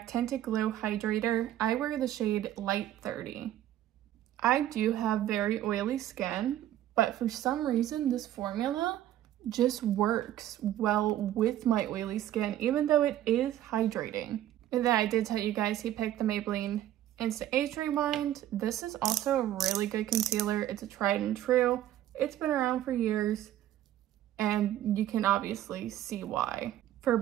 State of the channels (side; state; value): left; quieter; 12.6 dB